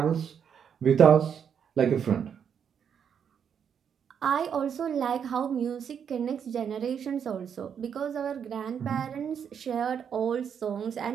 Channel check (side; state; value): left; quieter; 7.7 dB